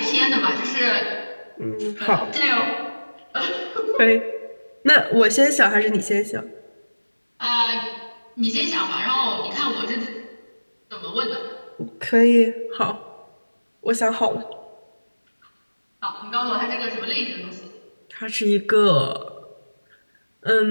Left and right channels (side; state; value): both; inverted; correlation -1.00